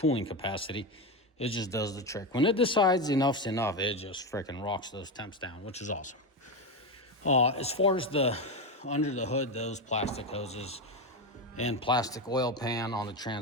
capacity. It just does the trick. When it decides enough's enough, it just freaking rocks those temps down, which is awesome. As far as the under the hood, those plastic hoses and plastic oil pan on the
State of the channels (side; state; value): both; normal; correlation 0.14